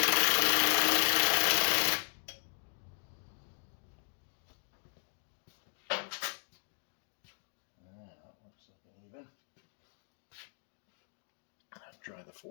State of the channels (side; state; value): right; silent; digital silence